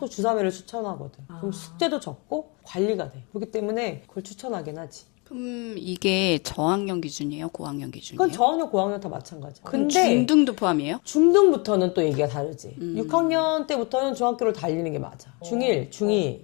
주 3회를 추천하거든. 그럼 숙제도 적고 관리가 돼. 그렇기 때문에 그걸 추천하긴 하지. 그럼 이게 저학년 기준이에요? 고학년 기준이에요? 그건 저학년, 고학년 다 마찬가지야. 근데 중등도 포함이에요? 중등부터는 또 얘기가 다르지. 6학년 때부터는 중학교를 달리는 게 맞아. 중1, 중2,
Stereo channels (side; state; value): right; quieter; 30.8 dB